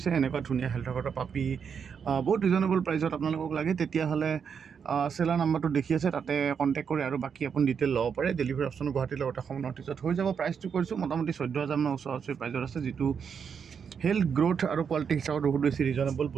এনেকুৱা ধুনীয়া হেল্থৰ কথাৰ পাপি বহুত ৰিজনেবল প্ৰাইচত আপোনালোকক লাগে, তেতিয়াহ'লে চেলাৰ নাম্বাৰটো দেখি আছে, তাতে কণ্টেক্ট কৰি আৰু বাকী আপুনি ডিটেইল ল'ব পাৰে। ডেলিভাৰী অপশ্যন গুৱাহাটীৰ লগতে অসমৰ নৰ্থ ইষ্টত হৈ যাব। প্ৰাইচটো কৰিছোঁ মোটামুটি 14,000 মান ওচৰা-ওচৰি প্ৰাইচত আছে, যিটো হেল্থ গ্ৰ'থ আৰু কোৱালিটি হিচাপত বহুত বেছি ৰিজনেবল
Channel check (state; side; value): quieter; left; 6.8 dB